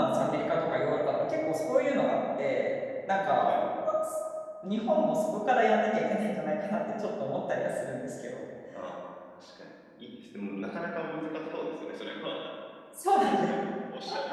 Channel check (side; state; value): both; identical; correlation 1.00